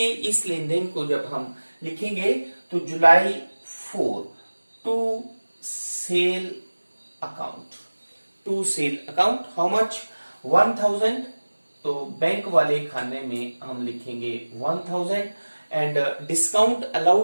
इस लेन देन को जब हम लिखेंगे तो July 4 to sale account. How much 1,000. तो बैंक वाले खाने में हम लिखेंगे 1000 एंड डिस्काउंट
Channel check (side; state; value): both; inverted; correlation -1.00